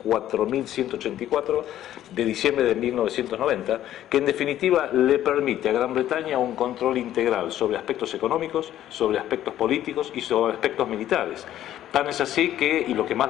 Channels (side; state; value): right; quieter; 12.3 dB